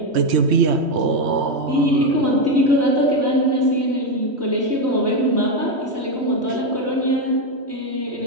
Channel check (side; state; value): left; late; 3.1 ms